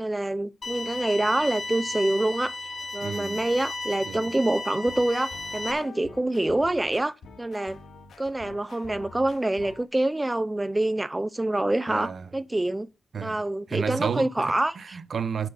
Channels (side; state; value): both; normal; correlation 0.97